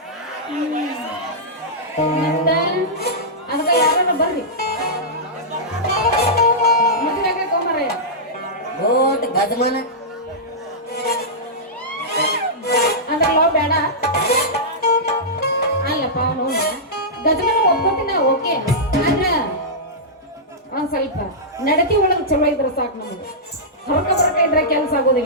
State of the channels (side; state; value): both; normal; correlation -0.13